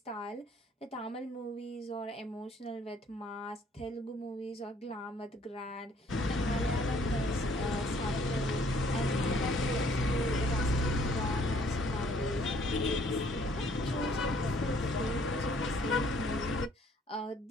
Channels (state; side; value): normal; both; correlation 0.61